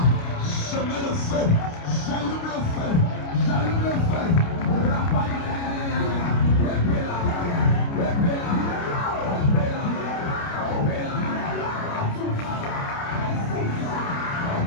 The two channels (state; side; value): late; right; 29 ms